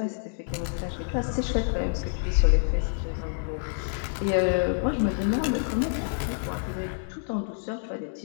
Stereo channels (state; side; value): silent; right; digital silence